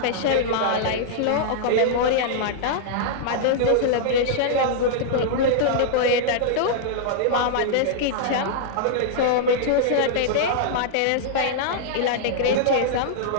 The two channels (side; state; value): both; different; correlation -0.02